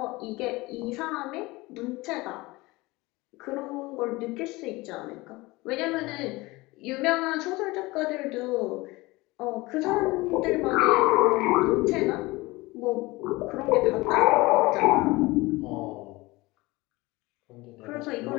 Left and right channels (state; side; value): quieter; right; 21.7 dB